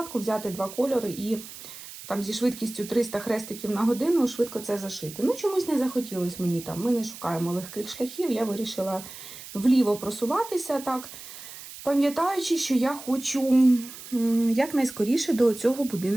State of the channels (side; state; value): right; noise; hiss, 14 dB below the sound